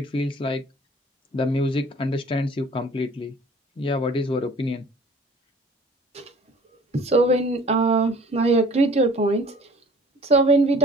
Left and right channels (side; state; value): both; normal; correlation 0.50